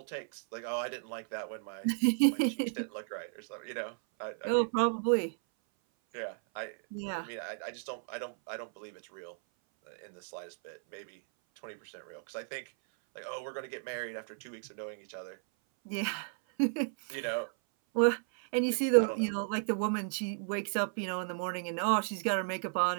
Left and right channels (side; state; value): left; silent; 55 dB below the other